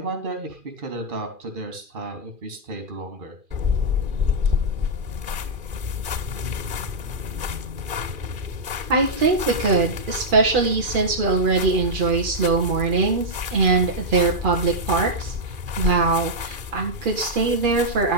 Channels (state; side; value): late; left; 2.4 ms